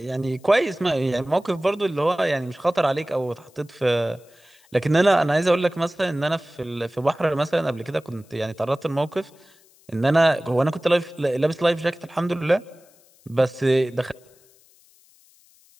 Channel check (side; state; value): left; noise; hiss, 30 dB below the sound